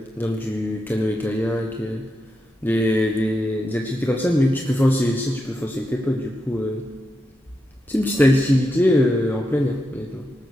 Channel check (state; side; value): normal; both; correlation 0.86